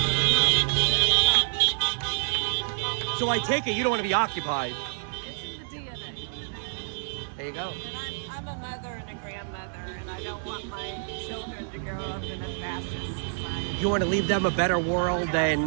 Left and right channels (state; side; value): silent; left; digital silence